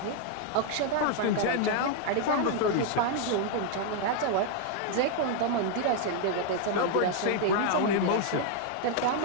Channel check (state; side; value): different; both; correlation 0.00